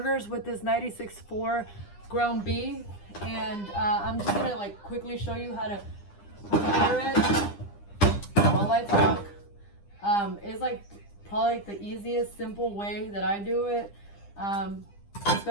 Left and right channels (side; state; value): right; late; 9.9 ms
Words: with this 96.4 ground beef, and I'm just gonna like quickly show you how to prepare it while I talk. It's like probably like the easiest, simple way that I do it.